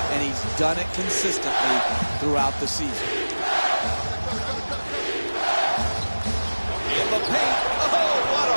and he's done it consistently throughout the season. In the paint. Oh, what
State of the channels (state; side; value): inverted; both; correlation -1.00